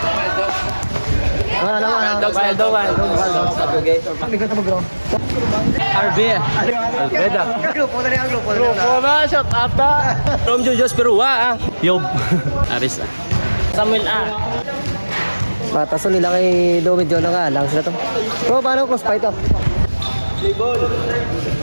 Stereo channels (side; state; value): both; inverted; correlation -1.00